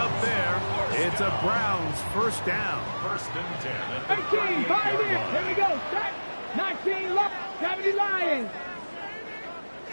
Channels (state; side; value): inverted; both; correlation -1.00